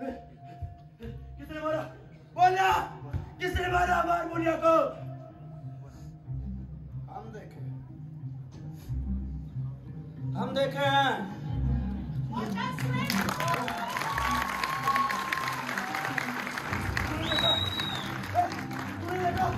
किसने मारा? बोलना, किसने मारा हारमोनिया को? हम देखे हैं।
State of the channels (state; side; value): identical; both; correlation 1.00